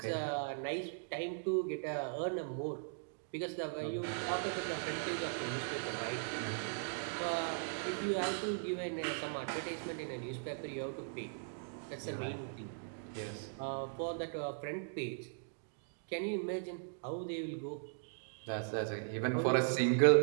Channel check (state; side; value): silent; left; digital silence